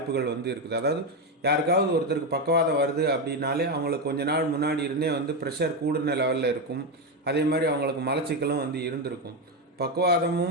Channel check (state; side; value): normal; both; correlation 0.10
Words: இருக்குது. அதாவது யாருக்காவது ஒருத்தருக்கு பக்கவாதம் வருது அப்படின்னாலே அவங்களுக்கு கொஞ்ச நாள் முன்னாடி இருந்தே ப்ரெஷர் கூடுன லெவலில் இருக்கும். அதே மாதிரி அவங்களுக்கு மலச்சிக்கலும் இருந்திருக்கும்.